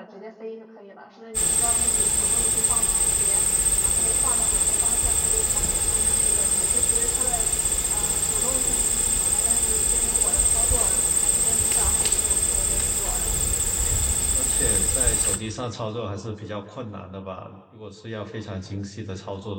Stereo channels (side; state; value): both; identical; correlation 1.00